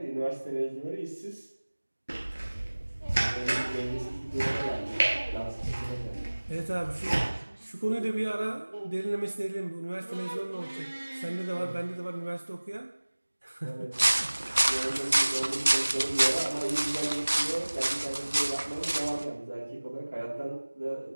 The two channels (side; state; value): both; inverted; correlation -1.00